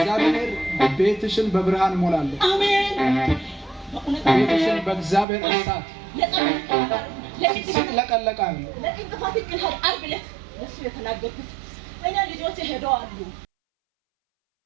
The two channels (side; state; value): left; drops out; at 5.2 s